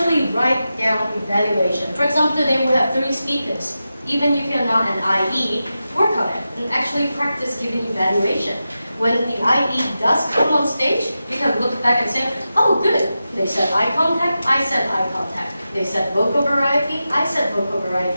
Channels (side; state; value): both; inverted; correlation -0.92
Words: write down evaluation. For example, today we have 3 speakers. Even if you're not an IE, work on it and actually practice giving evaluation. When the IE does come on stage, you can look back and say, oh good, they said eye contact, I said eye contact. They said vocal variety, I said vocal